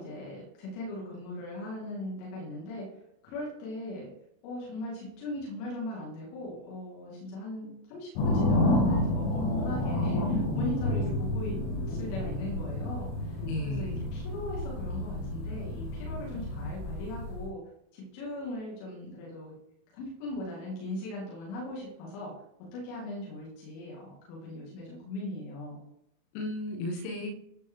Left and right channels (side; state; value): right; late; 37 ms